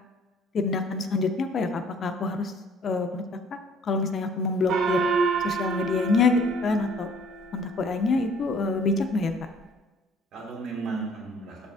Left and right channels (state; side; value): normal; both; correlation 0.56